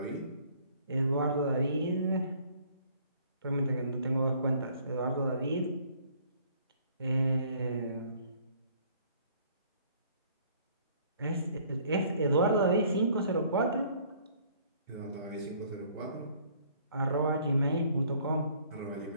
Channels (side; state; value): both; inverted; correlation -0.58